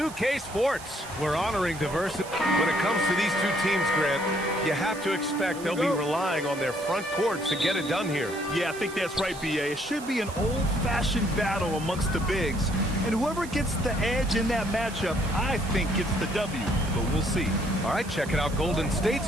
Sports. We're honoring diversity. When it comes to these two teams, Grant, you have to expect they'll be relying on their front courts to get it done here. Yeah, I think that's right, B.A. It should be an old-fashioned battle amongst the bigs. And whoever gets the edge in that matchup, I think gets the W. But we'll see. All right, checking out Golden State's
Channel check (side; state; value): right; noise; hiss, 16 dB below the sound